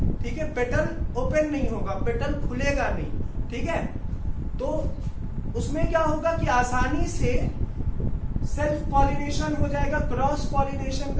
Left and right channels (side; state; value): both; identical; correlation 1.00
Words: ठीक है। पेटल ओपन नहीं होगा, पेटल खुलेगा नहीं, ठीक है। तो उसमें क्या होगा कि आसानी से सेल्फ पॉलिनेशन हो जाएगा, क्रॉस पॉलिनेशन